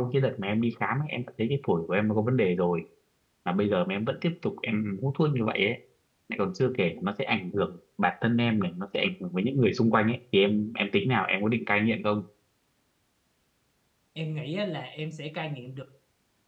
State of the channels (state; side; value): identical; both; correlation 1.00